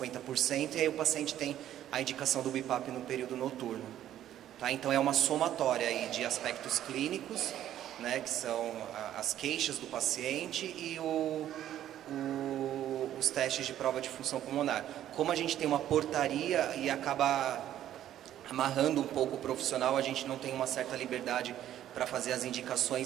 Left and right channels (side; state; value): left; quieter; 11.8 dB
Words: e aí o paciente tem a indicação do BiPAP no período noturno. Tá? Então é uma somatória aí de aspectos clínicos, né, que são as queixas do paciente e os testes de prova de função pulmonar. Como a gente tem uma portaria e acaba amarrando um pouco o profissional, a gente não tem uma certa liberdade para fazer as